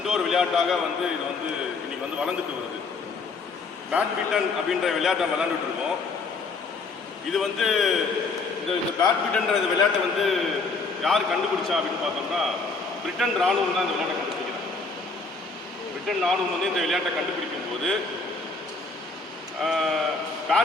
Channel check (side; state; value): right; quieter; 4.0 dB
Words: விளையாட்டாக வந்து இது வந்து இன்றைக்கி வந்து வளர்ந்துட்டு வருது. பேட்மிண்டன் அப்படின்ற விளையாட்டை விளையாண்டுட்டு இருக்கோம். இது வந்து இந்த பேட்மிண்டன்ற இந்த விளையாட்டை வந்து யார் கண்டுபிடிச்சா அப்படின்னு பார்த்தோம்னா பிரிட்டன் ராணுவம் தான் இந்த விளையாட்டை கண்டுபிடிக்கிறாங்க. பிரிட்டன் ராணுவம் வந்து இந்த விளையாட்டை கண்டுபிடிக்கும் போது